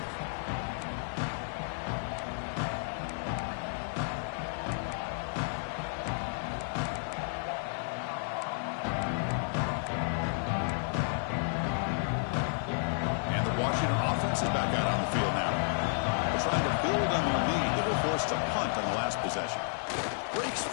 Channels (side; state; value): right; silent; digital silence